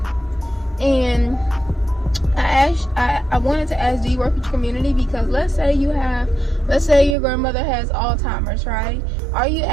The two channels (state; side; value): drops out; left; at 7.2 s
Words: And I wanted to ask, do you work with your community? Because let's say your grandmother has Alzheimer's, right? Are you